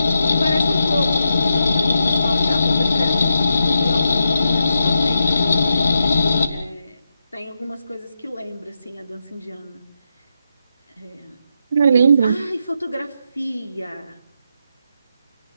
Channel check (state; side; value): inverted; both; correlation -0.85